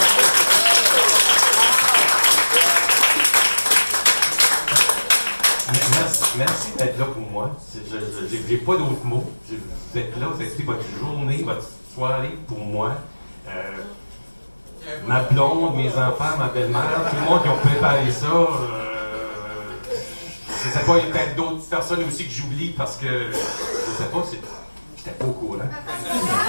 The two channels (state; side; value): inverted; both; correlation -1.00